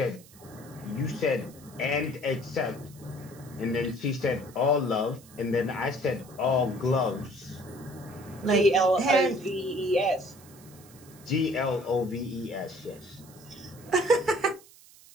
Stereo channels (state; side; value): noise; right; hiss, 23 dB below the sound